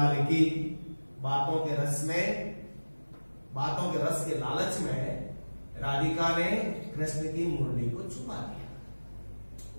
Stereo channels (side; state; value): both; inverted; correlation -1.00